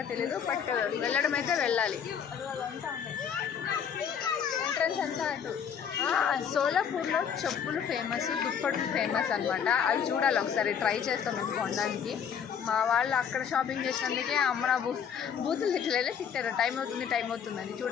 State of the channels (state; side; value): quieter; right; 7.7 dB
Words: తెలీదు. బట్ వెళ్ళడం అయితే వెళ్ళాలి. ఎంట్రన్స్ అంతా అటు. సోలాపూర్లో చెప్పులు ఫేమస్, దుప్పట్లు ఫేమస్ అనమాట. అవి చూడాలి ఒకసారి. ట్రై చేస్తాం మేము కొనడానికి. మా వాళ్ళు అక్కడ షాపింగ్ చేసినందుకే అమ్మ నా బూతులు తిట్టారు. టైం అవుతుందని.